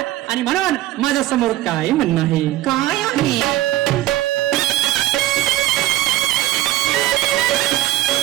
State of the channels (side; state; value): left; quieter; 15.5 dB